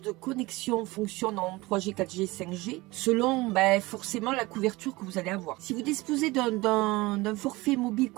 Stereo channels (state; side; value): quieter; left; 21.5 dB